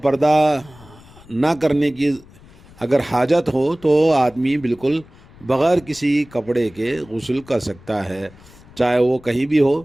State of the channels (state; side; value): noise; left; rumble, 24 dB below the sound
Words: نہ کرنے کی اگر حاجت ہو تو آدمی بالکل بغیر کسی کپڑے کے غسل کر سکتا ہے، چاہے وہ کہیں بھی ہو،